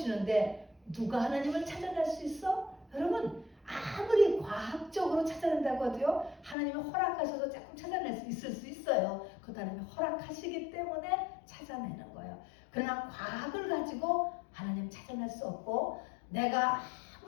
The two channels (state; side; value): drops out; right; at 6.6 s